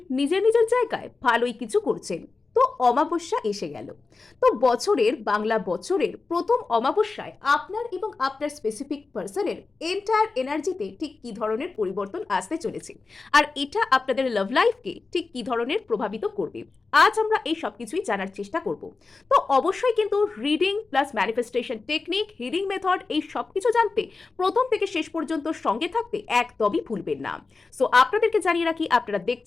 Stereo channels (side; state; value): right; quieter; 4.1 dB